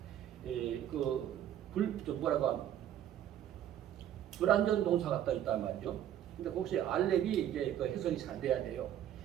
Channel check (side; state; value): left; quieter; 11.0 dB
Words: 불완전 동사가 떠 있단 말이죠. 근데 혹시 알렙이 이제 그 해석이 잘 돼야 돼요.